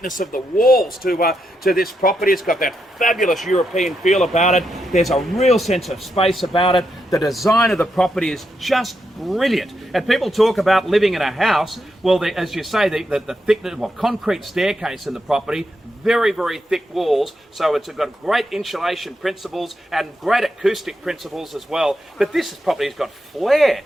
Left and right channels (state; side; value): normal; both; correlation 0.83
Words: of the walls to this property. It's got that fabulous European feel about it. There's a real sense of space about it. The design of the property is just brilliant. And people talk about living in a house. Well, as you say, the thickness, concrete staircase in the property, very, very thick walls. So it's got great insulation principles and great acoustic principles as well. But this property's got flair.